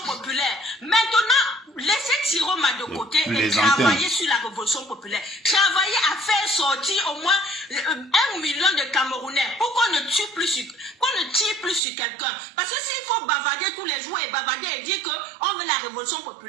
populaire. Maintenant, laissez Tiroma de côté et travailler sur la révolution populaire. Travailler à faire sortir au moins 1 million de Camerounais pour qu'on ne tire plus sur quelqu'un. Parce que s'il faut bavarder tous les jours et bavarder et dire qu'on veut la révolution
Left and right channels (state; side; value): drops out; left; at 11.8 s